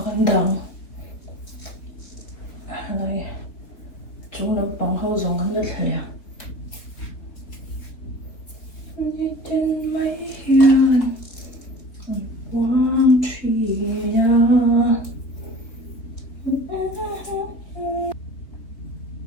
khăn đau này chúng nó bằng hậu dùng khăn rất là nhẹ trên mấy hiền quang truy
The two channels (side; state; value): right; late; 3.6 ms